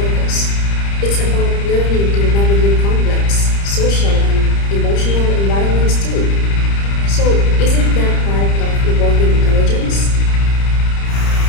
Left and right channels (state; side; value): late; right; 30 ms